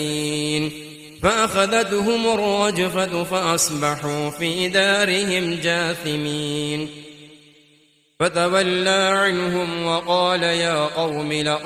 فأخذتهم الرجفة فأصبحوا في دارهم جاثمين فتولى عنهم وقال يا قوم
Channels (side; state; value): both; identical; correlation 1.00